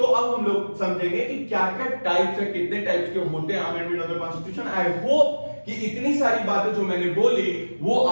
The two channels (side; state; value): both; inverted; correlation -1.00